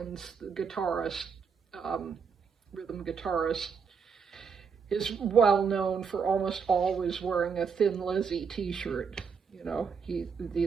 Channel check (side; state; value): left; quieter; 6.1 dB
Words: the guitarist, rhythm guitarist, is well known for almost always wearing a Thin Lizzy t-shirt. He